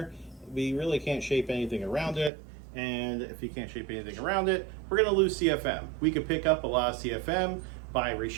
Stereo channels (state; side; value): drops out; left; at 2.3 s